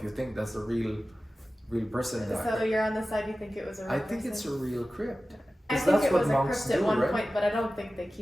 you think that's a real person in that. So you're on the side you think it was a real I person? think it's a real crypt. I 'Cause think that's it what was a monks crypt at do, one right? point, but I don't think they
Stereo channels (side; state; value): both; normal; correlation 0.95